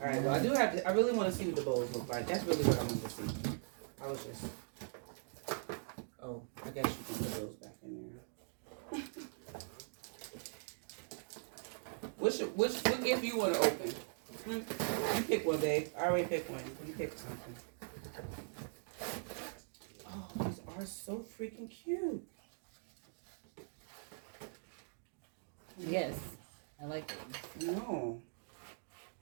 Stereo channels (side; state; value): left; silent; digital silence